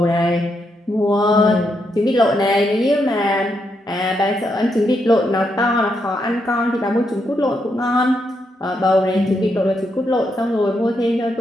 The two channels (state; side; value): normal; both; correlation 0.80